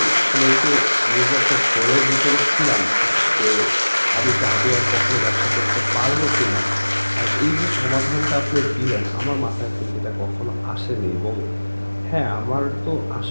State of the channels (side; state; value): both; inverted; correlation -1.00